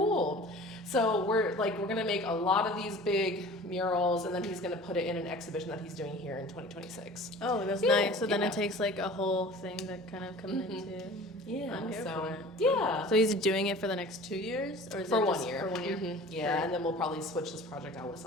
So we're gonna make a lot of these big murals, and then he's gonna put it in an exhibition that he's doing here in 2026. Oh, that's nice. So then it takes like a whole thing that kind of comes into. Yeah. I'm here for it. Yeah. So he's doing it for the next 2 years, or is For it 1 just year. For 1 year. Yeah, Great. and then we'll probably switch this project out with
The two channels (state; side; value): normal; both; correlation 0.43